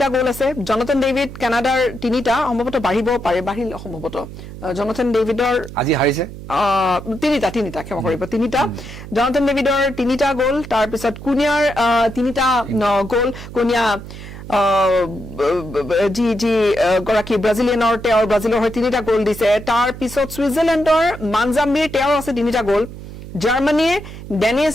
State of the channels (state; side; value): noise; right; hum, 13 dB below the sound